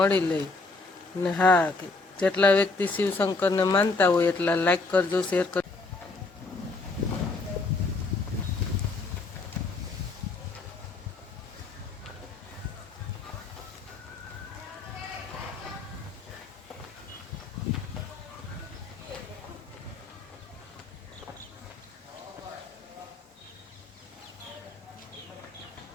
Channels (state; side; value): quieter; right; 3.7 dB